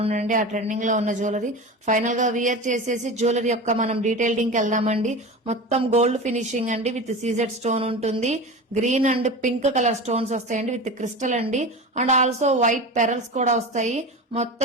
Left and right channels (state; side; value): normal; both; correlation 0.29